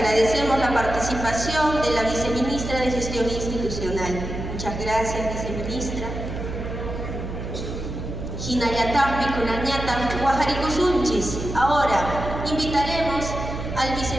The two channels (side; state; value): right; noise; hum, 6 dB below the sound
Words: la participación de la viceministra de Gestión Institucional. Muchas gracias, viceministra. Hinayatampi Kunañatam Guajaricusunchis. Ahora invitaremos al